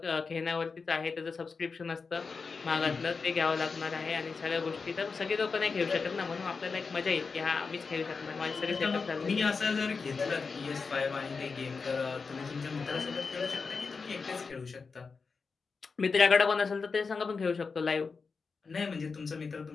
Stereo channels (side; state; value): right; quieter; 4.8 dB